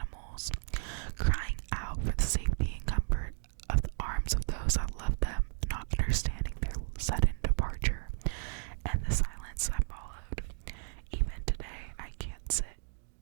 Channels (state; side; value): silent; left; digital silence